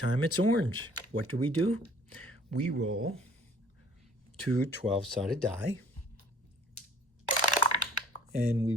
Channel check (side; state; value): both; normal; correlation 0.53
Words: it's orange. What do? We roll 2 12-sided die, and we